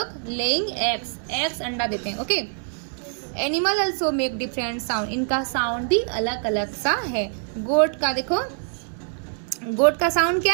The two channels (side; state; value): left; silent; digital silence